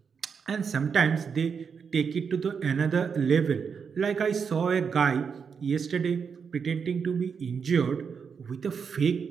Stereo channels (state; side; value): quieter; left; 6.2 dB